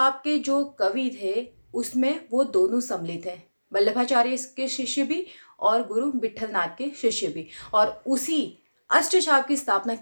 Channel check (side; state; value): both; inverted; correlation -1.00